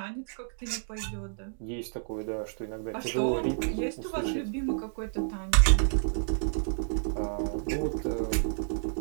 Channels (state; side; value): silent; left; digital silence